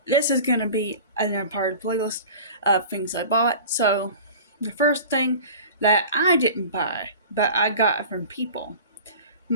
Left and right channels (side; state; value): both; inverted; correlation -0.39